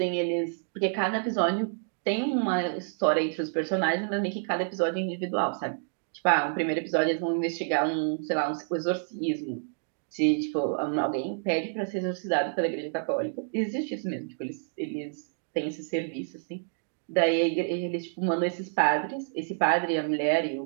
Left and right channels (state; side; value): silent; left; digital silence